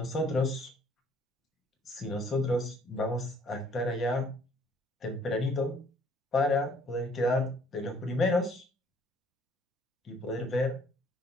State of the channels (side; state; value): both; normal; correlation 0.60